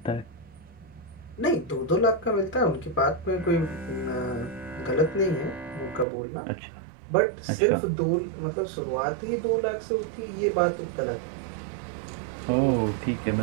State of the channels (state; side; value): drops out; left; at 6.1 s